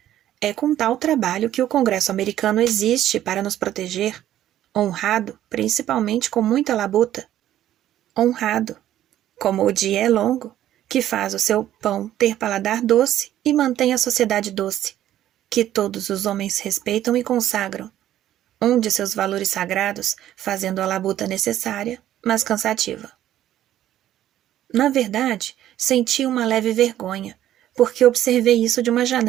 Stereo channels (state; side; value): quieter; left; 12.4 dB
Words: é com tal trabalho que o Congresso americano existe para nos proteger, honrado, principalmente com muita labuta. Honrado, como o dia é longo, que faz o seu pão ter paladar doce e mantém a sociedade doce, que todos os homens respeitam e consagram, um de seus valores sagrados, fazendo a labuta necessária, mas cansativa. Na verdade, senti uma leve vergonha, porque observei isso de uma